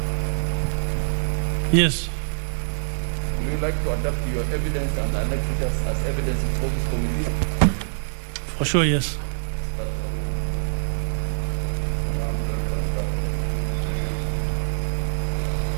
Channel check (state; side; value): silent; left; 61 dB below the other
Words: Yes. Would you like to adapt your evidence and annex it as evidence before this committee? For sure, yes.